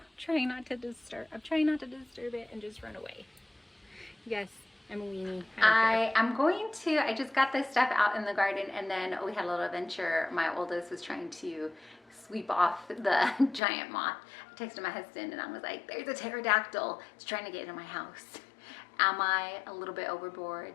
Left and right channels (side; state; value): right; drops out; at 13.6 s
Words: trying not to disturb. I'm trying not to disturb it and just run away. Yes, I'm a weenie. I just got this stuff out in the garden, and then we had a little adventure. My oldest was trying to sweep off the giant moth. I texted my husband and I was like, there's a pterodactyl. It's trying to get into my house. Am I a little bit